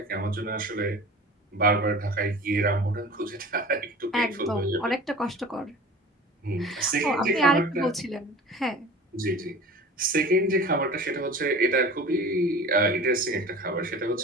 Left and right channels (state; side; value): normal; both; correlation 0.39